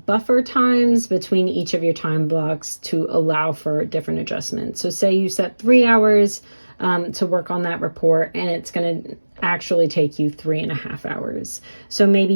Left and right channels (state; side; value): inverted; both; correlation -1.00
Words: buffer times between each of your time blocks to allow for different adjustments. So say you set 3 hours to work on that report, and it's going to actually take you 3.5 hours. So maybe